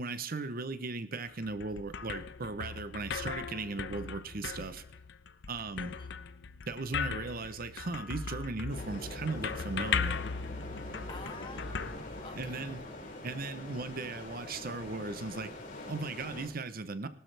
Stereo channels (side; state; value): both; normal; correlation 0.42